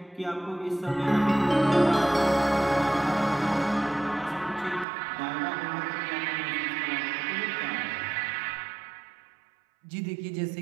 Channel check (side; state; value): left; drops out; at 4.9 s